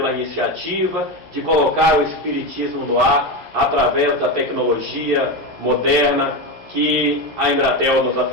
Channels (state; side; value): late; left; 11 ms